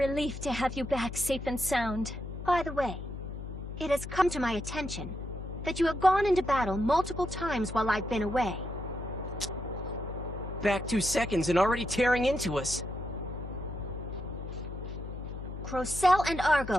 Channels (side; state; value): left; noise; hum, 9 dB below the sound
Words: to have you back safe and sound. By the way, it has come to my attention that you have gone into battle multiple times while I've been away. Back 2 seconds and already tearing into us. Crocell and